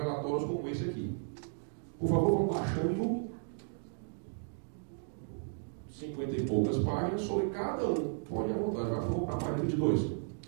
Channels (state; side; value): silent; left; digital silence